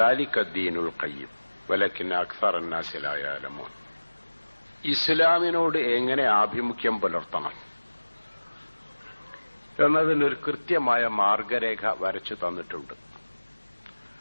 ذلك الدين القيم ولكن أكثر الناس لا يعلمون. ഇസ്ലാമിനോട് എങ്ങനെ ആഭിമുഖ്യം പുലർത്തണം എന്നതിനൊരു കൃത്യമായ മാർഗരേഖ വരച്ചു തന്നിട്ടുണ്ട്.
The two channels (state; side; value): inverted; both; correlation -1.00